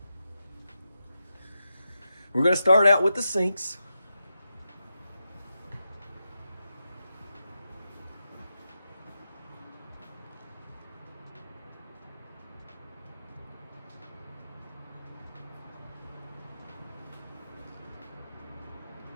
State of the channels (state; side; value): inverted; both; correlation -0.88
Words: We're gonna start out with the sinks.